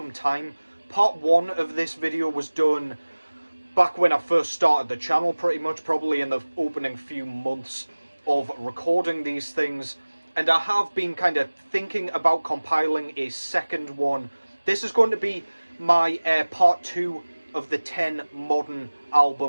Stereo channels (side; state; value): both; inverted; correlation -1.00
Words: time. Part 1 of this video was done back when I first started the channel, pretty much, probably in the opening few months of recording these things. And I have been kind of thinking about compiling a second one. This is going to be my part 2 of the 10 modern